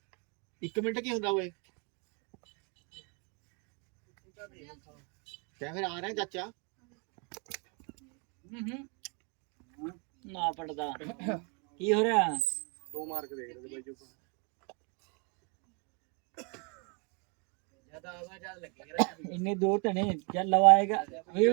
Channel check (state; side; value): quieter; left; 34.5 dB